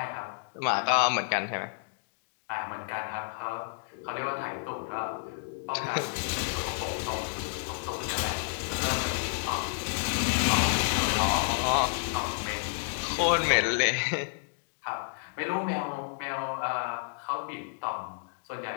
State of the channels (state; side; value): silent; right; digital silence